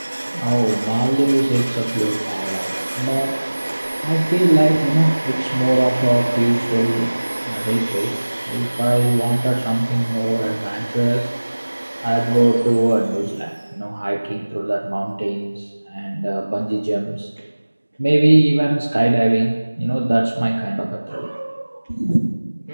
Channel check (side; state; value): both; inverted; correlation -1.00